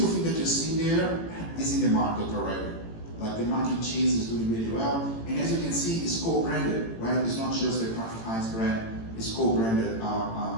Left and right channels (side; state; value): right; late; 18 ms